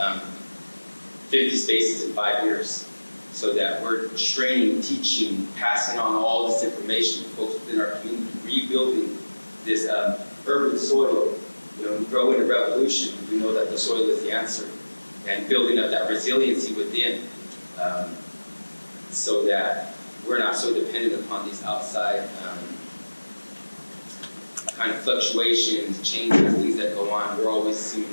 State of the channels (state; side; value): inverted; both; correlation -1.00